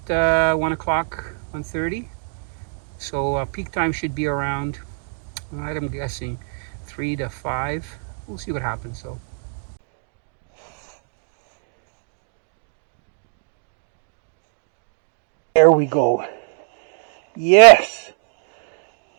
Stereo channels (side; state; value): left; silent; 63 dB below the other